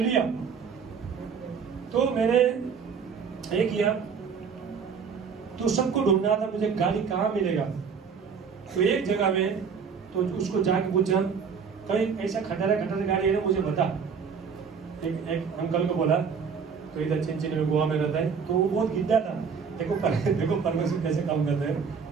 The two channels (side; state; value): left; quieter; 6.2 dB